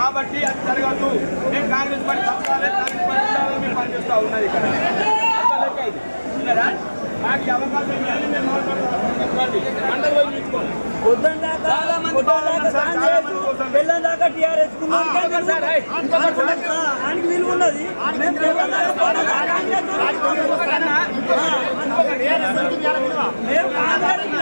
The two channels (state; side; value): inverted; both; correlation -1.00